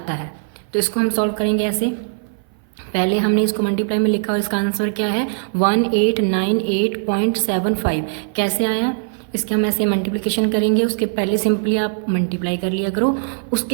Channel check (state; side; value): silent; left; 58 dB below the other